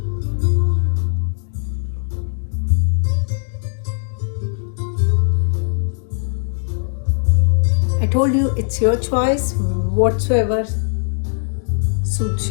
I told you it's your choice. Whatsoever suits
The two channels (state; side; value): silent; right; digital silence